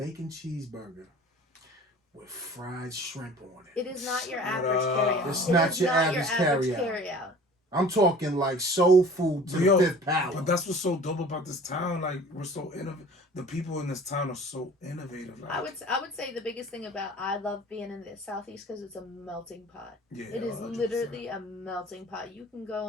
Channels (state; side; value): normal; both; correlation 0.45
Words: cheeseburger with fried shrimp on it. It is not your Shut average up. carryout. It's It not is your not average your carryout. I'm talking like soul food to Yo, the fifth power. But that's what's so dope about this town. Like we're so innovative. The people in this town are so innovative. Like, I would say the biggest thing about I love being in the Southeast because it's a melting pot. yeah, It is 100%. literally a melting pot. You can go